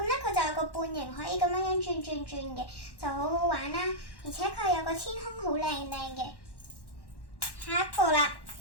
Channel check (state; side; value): late; right; 1.1 ms